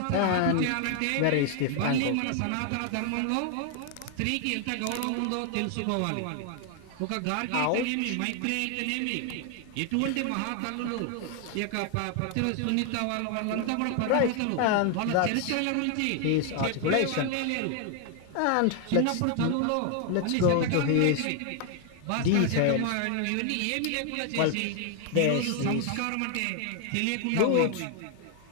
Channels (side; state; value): both; different; correlation 0.00